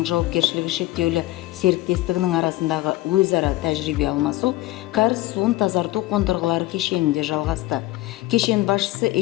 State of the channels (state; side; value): quieter; right; 17.9 dB